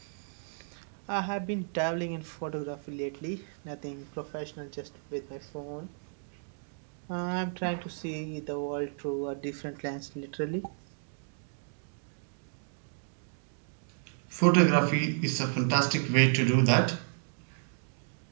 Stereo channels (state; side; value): silent; left; digital silence